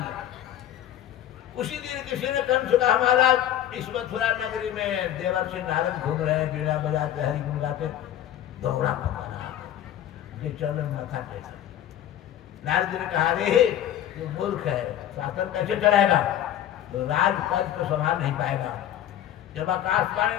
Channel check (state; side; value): quieter; right; 11.4 dB